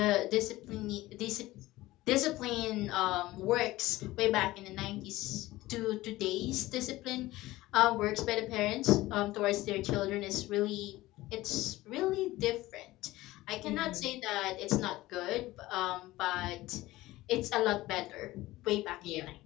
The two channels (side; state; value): right; quieter; 17.7 dB